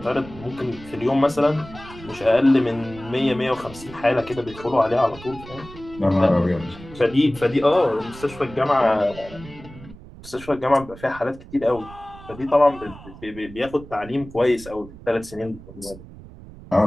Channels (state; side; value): noise; right; rumble, 17 dB below the sound